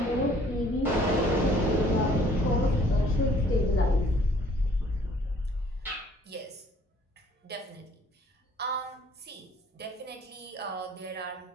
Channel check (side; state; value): both; normal; correlation 0.58